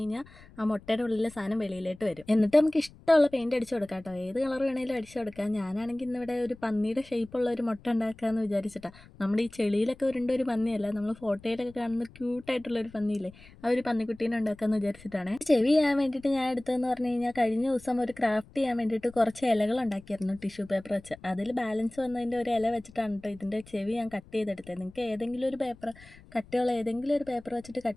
കഴിഞ്ഞാൽ ആ മുട്ടയുടെ ഉള്ളിലെ സാധനം വെളിയിലോട്ട് വരും. എന്നിട്ട് നമുക്ക് ഇഷ്ടമുള്ള പെയിന്റ് അടിച്ചു കൊടുക്കാം കേട്ടോ. ഏത് കളർ വേണേലും അടിച്ചു കൊടുക്കാം. ഞാനാണെങ്കിൽ ഇന്നിവിടെ ഒരു പന്നിയുടെ ഷേപ്പുള്ള ഒരു മുട്ട ഉണ്ടാക്കാമെന്ന് വിചാരിച്ചിട്ടാ. നമ്മുടെ ഈ ചെളിയിലൊക്കെ ഉരുണ്ട ഒരു പന്നിയല്ല, നമ്മൾ ഫോട്ടോയിലൊക്കെ കാണുന്ന ക്യൂട്ടായിട്ടുള്ള ഒരു പന്നിയില്ലേ, ആ ഒരു പന്നിക്കുട്ടീനെ ഉണ്ടാക്കാമെന്ന് വിചാരിച്ചിട്ടാണ്. ചെവി ചെയ്യാൻ വേണ്ടിയിട്ട് ഞാൻ എടുത്തതെന്ന് പറഞ്ഞു കഴിഞ്ഞാൽ, കഴിഞ്ഞ ദിവസം ഒരു ക്രാഫ്റ്റ് ചെയ്യാൻ വേണ്ടിയിട്ട് കുറച്ച് ഇലകൾ ഉണ്ടാക്കിയായിരുന്നു ടിഷ്യൂ പേപ്പർ വെച്ച്. അതിൽ ബാലൻസ് വന്നതിൻ്റെ ഒരു ഇല വെച്ചിട്ടാണ് കേട്ടോ ഇതിൻ്റെ ചെവി ഞാൻ കട്ട് ചെയ്തെടുത്തത്. നിങ്ങൾക്ക് ഏതെങ്കിലും ഒരു പേപ്പർ, കട്ടിയുള്ള ഏതെങ്കിലും ഒരു പേപ്പർ വെച്ചിട്ട്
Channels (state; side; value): noise; left; rumble, 23 dB below the sound